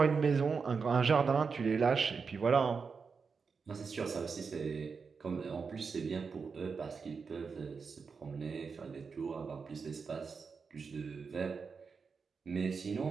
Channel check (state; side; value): quieter; left; 5.3 dB